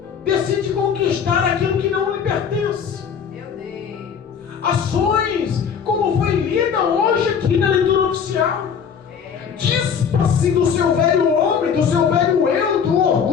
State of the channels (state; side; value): quieter; right; 7.1 dB